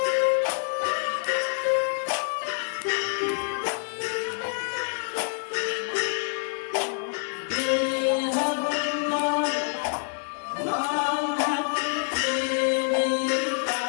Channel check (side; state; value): right; silent; 60 dB below the other